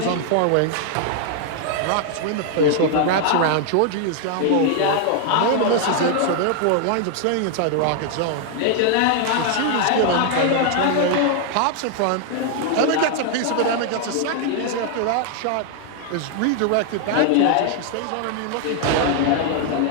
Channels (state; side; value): different; both; correlation 0.00